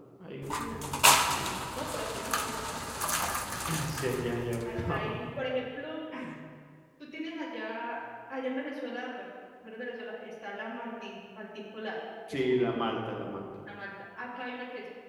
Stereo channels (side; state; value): both; identical; correlation 1.00